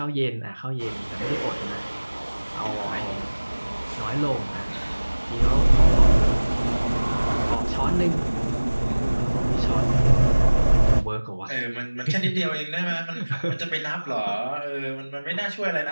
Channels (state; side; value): inverted; both; correlation -1.00